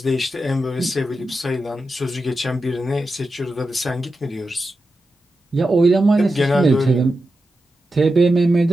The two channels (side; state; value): both; normal; correlation 0.90